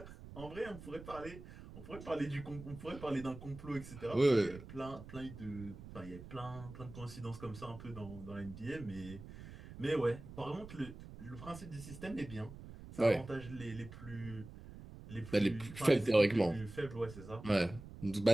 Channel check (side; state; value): right; noise; rumble, 14 dB below the sound